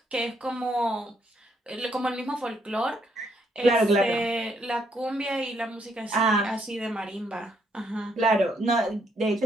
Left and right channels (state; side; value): normal; both; correlation 0.72